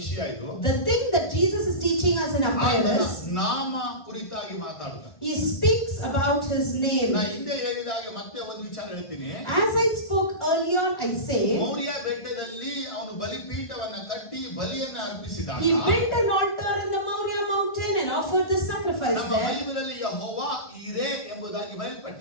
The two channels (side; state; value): right; late; 1.5 ms